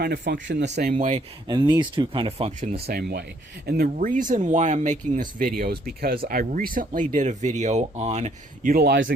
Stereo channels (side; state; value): both; normal; correlation 0.66